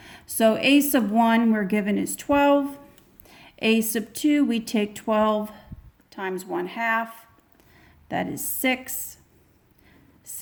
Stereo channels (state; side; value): identical; both; correlation 1.00